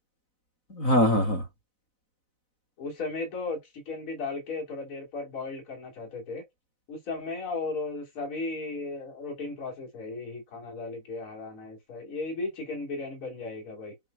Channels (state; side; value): late; right; 4.0 ms